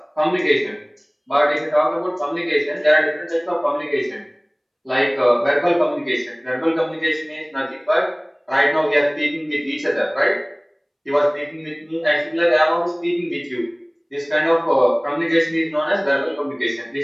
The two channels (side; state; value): both; identical; correlation 1.00